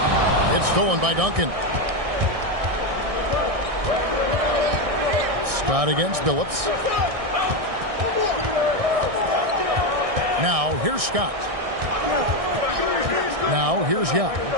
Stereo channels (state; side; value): late; left; 1.6 ms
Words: It's stolen by Duncan. Scott against Billups. Now, here's Scott. Now, here's Yao.